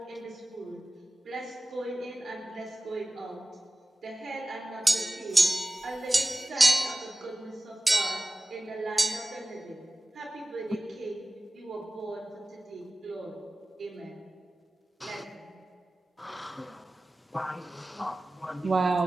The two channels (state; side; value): normal; both; correlation 0.96